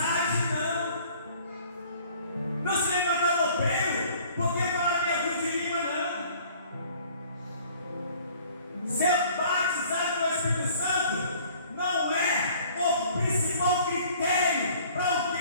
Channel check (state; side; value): inverted; both; correlation -0.54